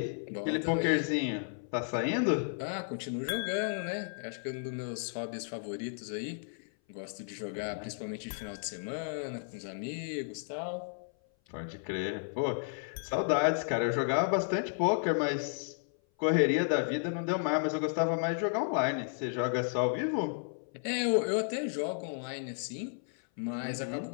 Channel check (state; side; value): silent; right; 56 dB below the other